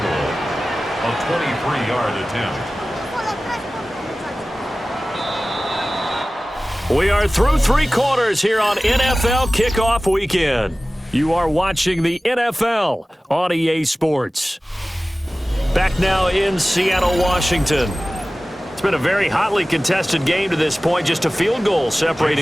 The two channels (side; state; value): both; normal; correlation 0.97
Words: goal. A 23-yard attempt. We are through 3 quarters here on NFL Kickoff Weekend. You are watching the NFL on EA Sports. Back now in Seattle, Washington. It's been a very hotly contested game to this point. Just a field goal